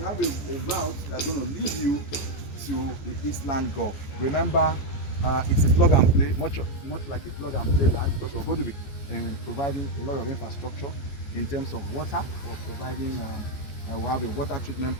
have a route that's going to lead you to the Eastland Golf. Remember, it's a plug and play, much like a plug and play land, because we're going to be providing a lot of infrastructure in terms of water. We're providing. We have a water treatment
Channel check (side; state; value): right; late; 14 ms